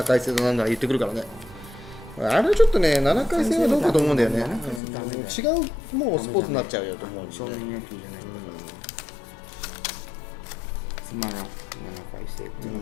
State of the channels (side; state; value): right; drops out; at 4.8 s